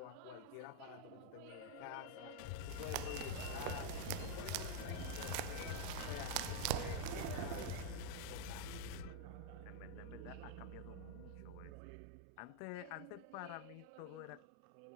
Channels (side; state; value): both; different; correlation 0.00